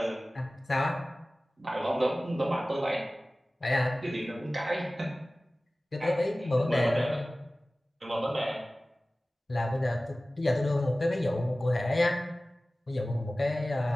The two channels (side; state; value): both; normal; correlation 0.97